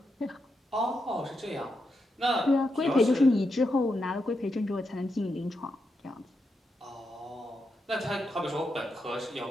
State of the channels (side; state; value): both; normal; correlation 0.84